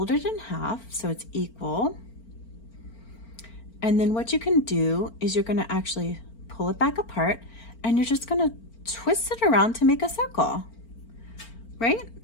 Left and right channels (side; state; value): right; late; 4.4 ms